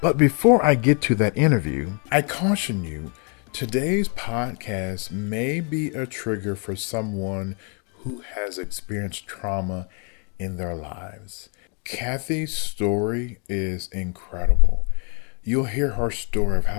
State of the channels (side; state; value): right; quieter; 38.0 dB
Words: but before I get to that interview, I caution you, today's podcast may be a trigger for someone who has experienced trauma in their lives. Kathy's story is incredible. You'll hear her story of